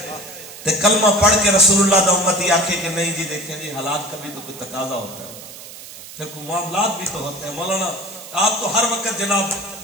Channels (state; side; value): noise; right; hiss, 15 dB below the sound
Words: تے کلمہ پڑھ کے رسول اللہ دا امتی آکھے کہ نہیں جی دیکھیں جی حالات کا بھی تو کوئی تقاضا ہوتا ہے پھر کوئی معاملات بھی تو ہوتے ہیں مولانا آپ تو ہر وقت جناب